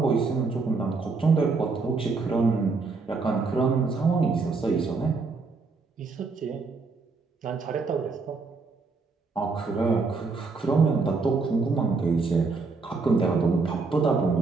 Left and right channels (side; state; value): left; quieter; 4.2 dB